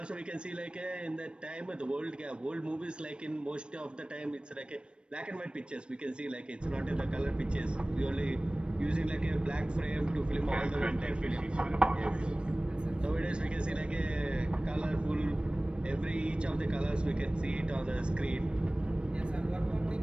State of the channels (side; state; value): left; late; 0.056 ms